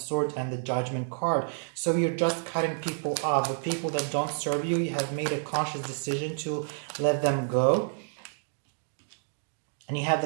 and the Judgment card. So you're just cutting people off. The people that don't serve you, you have made a conscious decision to let them go. And you have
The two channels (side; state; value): left; silent; digital silence